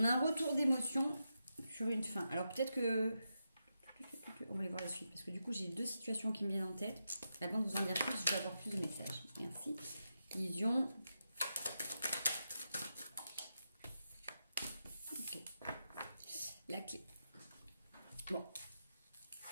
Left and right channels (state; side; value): inverted; both; correlation -0.87